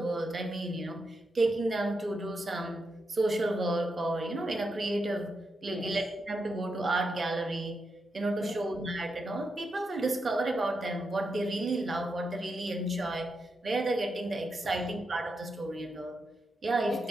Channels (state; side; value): normal; both; correlation 0.85